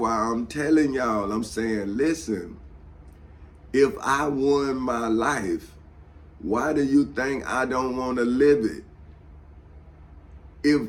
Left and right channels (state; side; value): identical; both; correlation 1.00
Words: I'm telling y'all, I'm saying, listen, if I won my life, why do you think I don't want to live it?